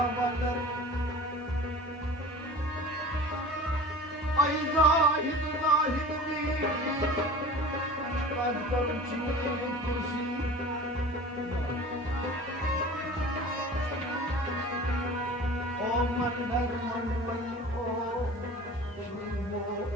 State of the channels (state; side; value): normal; both; correlation 0.40